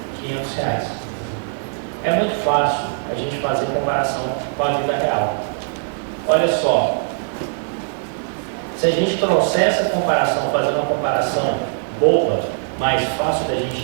R$500. É muito fácil a gente fazer comparação com a vida real. Olha só, se a gente trouxer essa comparação, fazer uma comparação boba, mais fácil da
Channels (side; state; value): left; silent; digital silence